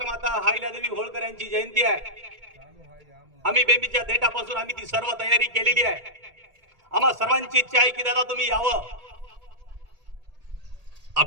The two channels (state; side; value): late; left; 1.8 ms